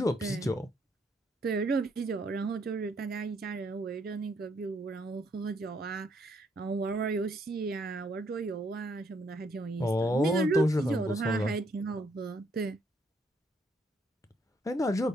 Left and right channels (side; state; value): both; normal; correlation 0.71